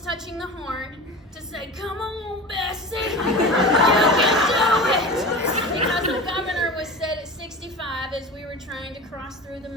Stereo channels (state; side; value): normal; both; correlation 0.32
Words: touching the horn, to say, "Come on, Bessie, you can do it!" Because the governor was set at 65 as we were trying to cross through the